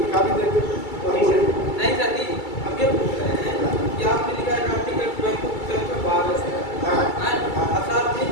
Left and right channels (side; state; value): right; late; 2.3 ms